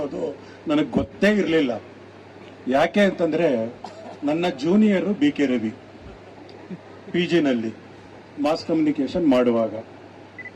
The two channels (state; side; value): identical; both; correlation 1.00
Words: ನನಗೆ ಗೊತ್ತೇ ಇರಲಿಲ್ಲ. ಯಾಕೆ ಅಂತಂದ್ರೆ ನನ್ನ junior B K Ravi PG ನಲ್ಲಿ ಮಾಸ್ ಕಮ್ಯುನಿಕೇಶನ್ ಮಾಡುವಾಗ.